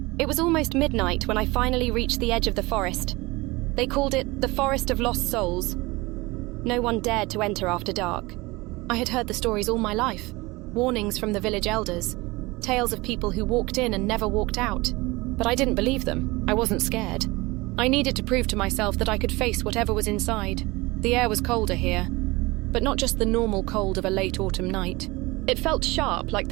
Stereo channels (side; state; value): left; quieter; 22.5 dB